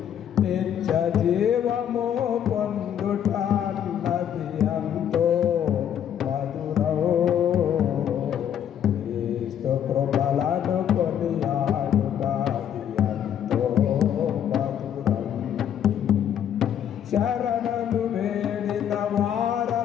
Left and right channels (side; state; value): right; quieter; 9.5 dB